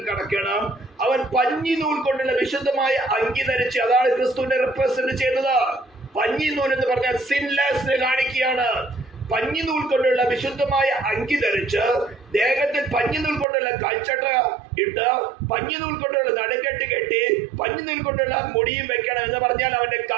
കടക്കണം. അവൻ പഞ്ഞി നൂൽ കൊണ്ടുള്ള വിശുദ്ധമായ അങ്കി ധരിച്ച്, അതാണ് ക്രിസ്തുവിനെ റെപ്രസെന്റ് ചെയ്യുന്നത്. പഞ്ഞി നൂൽ എന്ന് പറഞ്ഞാൽ സിൻലെസ്സിനെ കാണിക്കുകയാണ്. പഞ്ഞി നൂൽ കൊണ്ടുള്ള വിശുദ്ധമായ അങ്കി ധരിച്ച്, ദേഹത്തിൽ പഞ്ഞി നൂൽ കൊണ്ടുള്ള കൽച്ചട്ട ഇട്ട്, പഞ്ഞി നൂൽ കൊണ്ടുള്ള നടുക്കെട്ട് കെട്ടി, പഞ്ഞി നൂൽ കൊണ്ടുള്ള മുടിയും വെക്കണം. എന്ന് പറഞ്ഞാൽ അവന്റെ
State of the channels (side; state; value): left; drops out; at 13.5 s